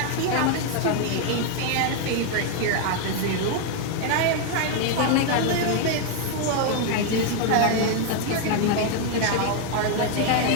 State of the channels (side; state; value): both; different; correlation 0.01